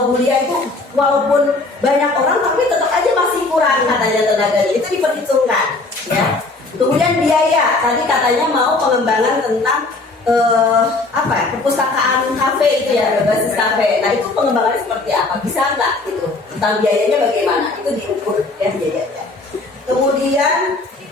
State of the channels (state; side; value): quieter; right; 3.3 dB